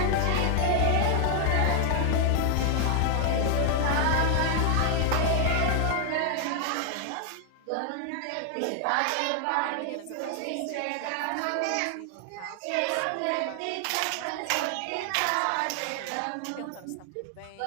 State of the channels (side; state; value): both; different; correlation 0.00